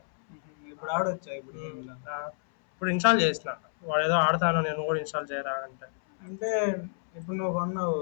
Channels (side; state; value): right; silent; 59 dB below the other